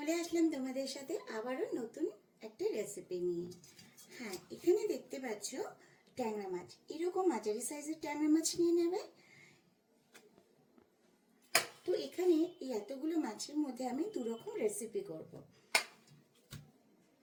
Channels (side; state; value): both; identical; correlation 1.00